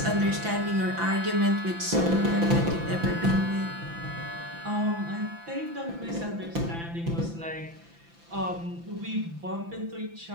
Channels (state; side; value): late; left; 5.9 ms